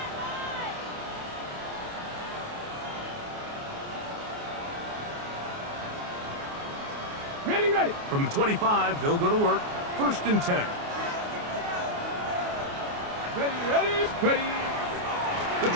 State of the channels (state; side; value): late; left; 29 ms